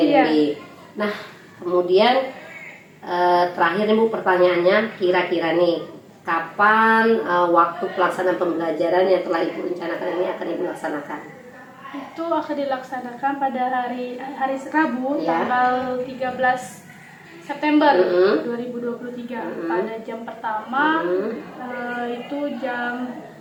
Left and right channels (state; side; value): identical; both; correlation 1.00